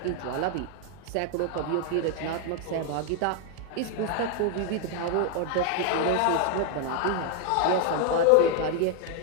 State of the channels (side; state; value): both; different; correlation 0.00